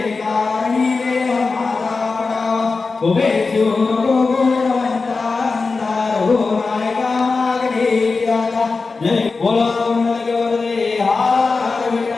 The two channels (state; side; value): quieter; right; 4.2 dB